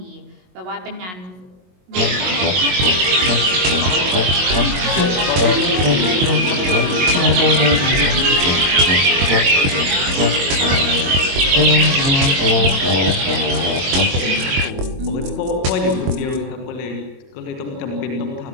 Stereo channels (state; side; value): late; left; 22 ms